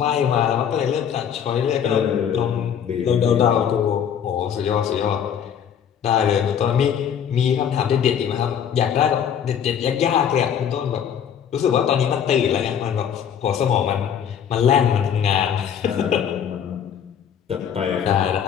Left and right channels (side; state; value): right; quieter; 8.5 dB